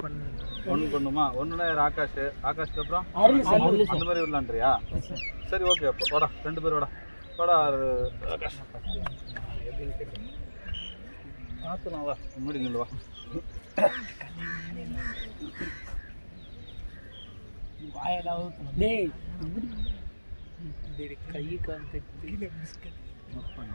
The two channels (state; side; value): inverted; both; correlation -1.00